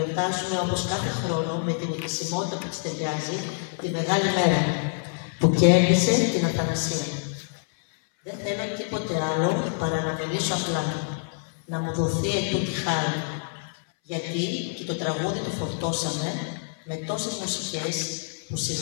όπως κάθε χρόνο με την επισημότητα που της ταιριάζει τη μεγάλη μέρα που κέρδισε την αθανασία. Δεν θέλω τίποτε άλλο παρά να μιλήσω απλά, να μου δοθεί ετούτη χάρη, γιατί και το τραγούδι το φορτώσαμε με τόσες μουσικές που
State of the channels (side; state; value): right; silent; 61 dB below the other